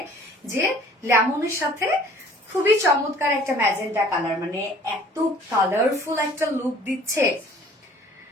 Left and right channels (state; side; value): normal; both; correlation 0.52